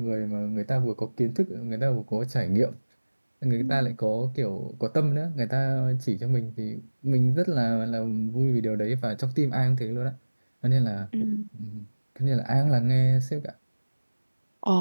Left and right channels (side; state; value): both; inverted; correlation -1.00